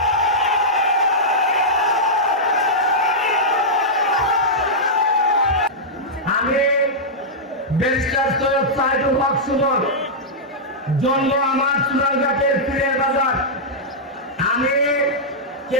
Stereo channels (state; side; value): normal; both; correlation -0.10